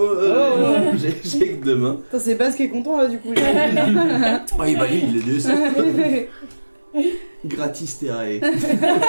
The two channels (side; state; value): both; inverted; correlation -1.00